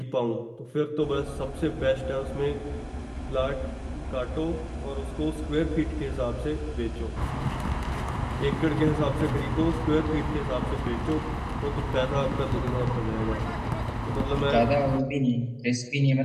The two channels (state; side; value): identical; both; correlation 1.00